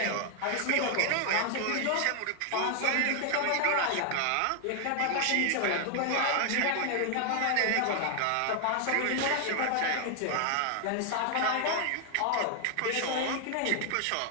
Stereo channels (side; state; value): both; different; correlation 0.00